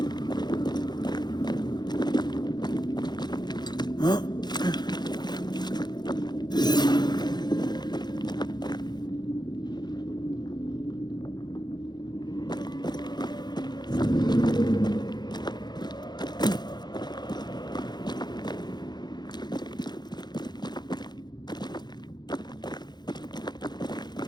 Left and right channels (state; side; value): late; right; 0.21 ms